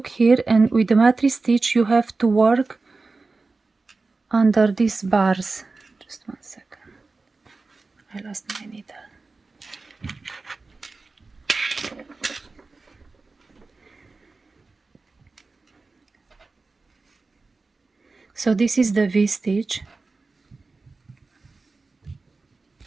here, and with the mattress stitch you have to work under these bars. Just 1 second, I lost my needle. So this is the V stitch,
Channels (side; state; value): left; quieter; 3.8 dB